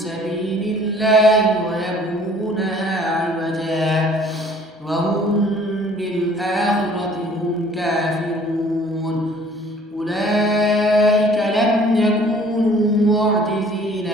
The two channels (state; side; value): normal; both; correlation 0.54